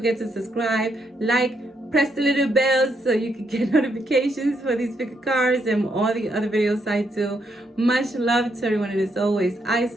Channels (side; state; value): both; normal; correlation 0.77